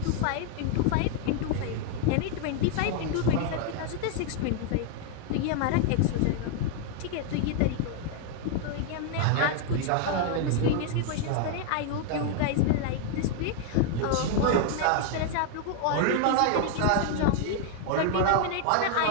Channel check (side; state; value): both; different; correlation 0.00